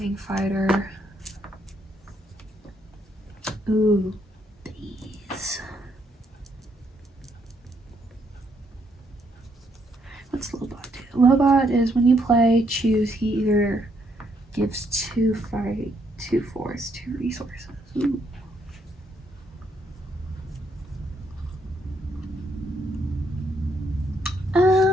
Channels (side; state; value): both; normal; correlation 0.73